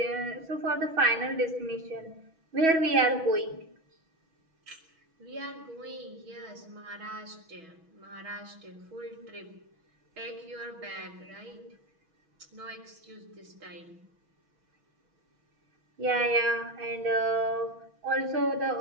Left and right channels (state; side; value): late; left; 6.2 ms